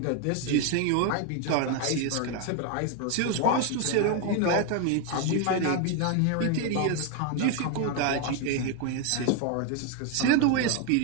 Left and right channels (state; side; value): different; both; correlation 0.01